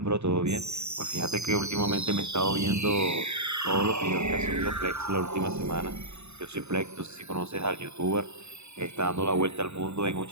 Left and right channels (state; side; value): late; left; 0.81 ms